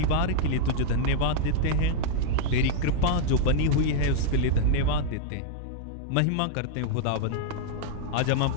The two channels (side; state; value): both; different; correlation -0.01